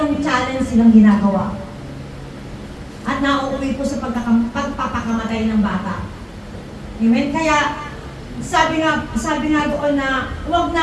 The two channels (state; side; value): identical; both; correlation 1.00